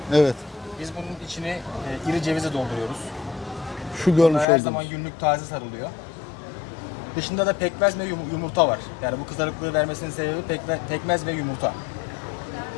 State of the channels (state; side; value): drops out; right; at 4.5 s